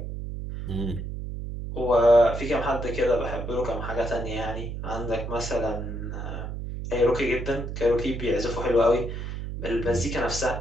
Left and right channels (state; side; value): noise; right; hum, 6 dB below the sound